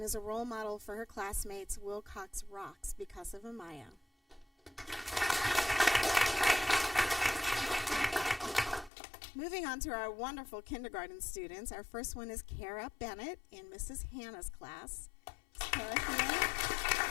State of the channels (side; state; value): right; drops out; at 8.9 s